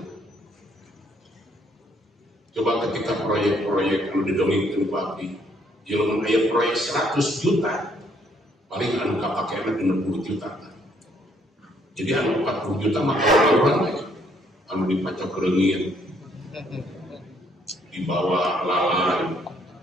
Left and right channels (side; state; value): both; normal; correlation 0.67